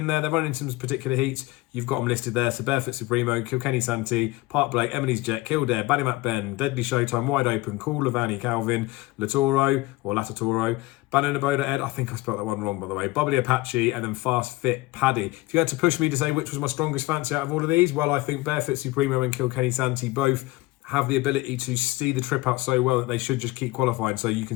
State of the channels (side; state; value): right; quieter; 20.0 dB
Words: there. They're running some particular heats. You've got them listed there. So Barefoot Supremo, Kilkenny Santee, Park Blake, Emily's Jet, Kildare, Ballymac Ben, Deadly Showtime, Wide Open, Cool Lavani, Calvin, Latoro or Latatoro, Bananaboda Ed, I think I spelled that one wrong by the way, Bubbly Apache, and then Fast Fit Paddy. If you had to push me to say which was my strongest fancy out of all of these, well, I think Barefoot Supremo and Kilkenny Santee both have the ability to see the trip out so well that they should just keep qualifying. So you can